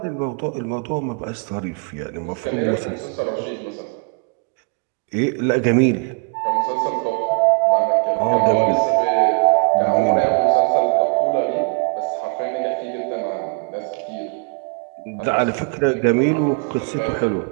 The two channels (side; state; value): left; quieter; 36.3 dB